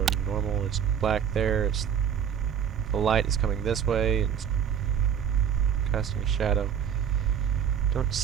normal, it's black there. The light is coming this way, and it's casting a shadow. Don't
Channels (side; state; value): left; quieter; 8.5 dB